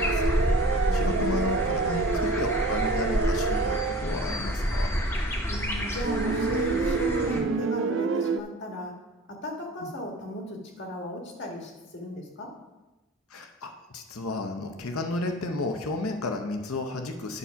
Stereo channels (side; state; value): both; normal; correlation 0.41